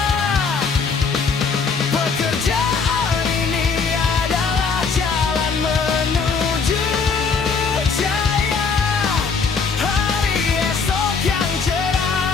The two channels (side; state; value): right; quieter; 5.2 dB